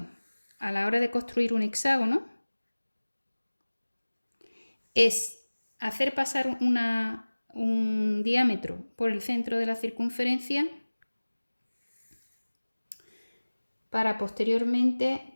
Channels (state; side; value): inverted; both; correlation -1.00